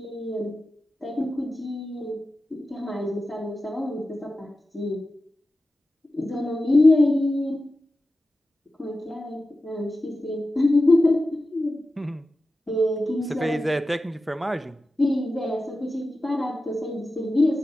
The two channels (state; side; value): normal; both; correlation 0.93